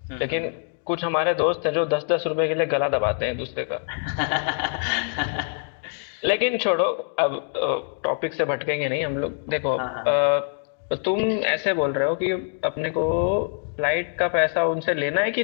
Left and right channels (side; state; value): right; silent; 58 dB below the other